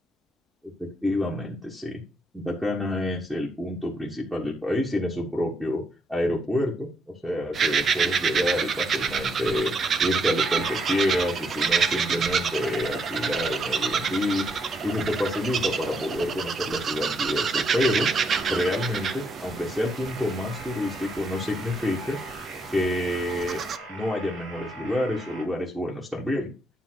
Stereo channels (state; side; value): normal; both; correlation 0.75